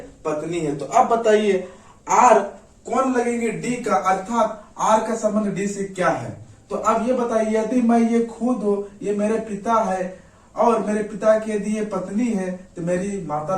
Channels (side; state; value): both; identical; correlation 1.00